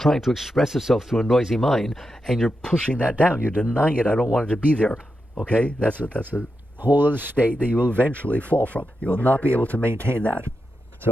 to express itself through a noisy mind, and you're pushing that down. You're denying it. I don't want it to be there. Okay? That's a whole other state that you will eventually fall from. You will not be able to maintain that.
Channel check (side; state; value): both; normal; correlation 0.88